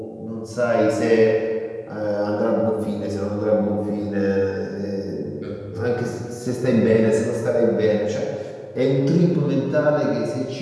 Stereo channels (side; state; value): both; identical; correlation 1.00